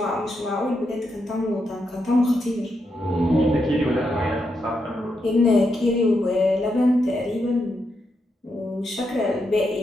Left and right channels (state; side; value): normal; both; correlation 0.83